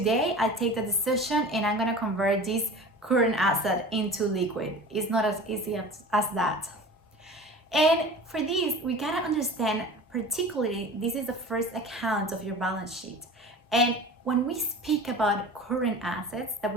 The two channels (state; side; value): normal; both; correlation 0.38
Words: I take the decision and I'm gonna convert this current asset into liquid. It's not as easy as that. And for this, we gotta understand, particularly, this is the first account of your balance sheet. And when we speak about current assets that